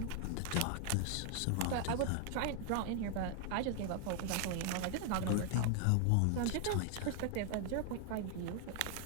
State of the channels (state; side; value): different; both; correlation 0.00